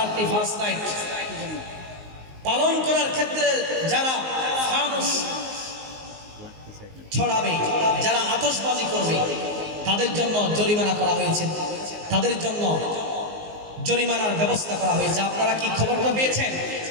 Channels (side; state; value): left; late; 19 ms